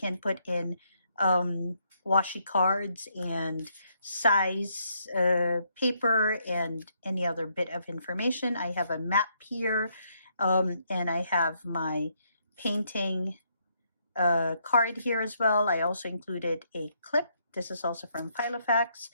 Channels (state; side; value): inverted; both; correlation -0.74